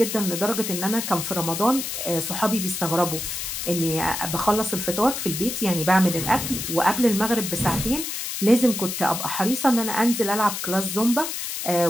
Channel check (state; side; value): noise; left; hiss, 4 dB below the sound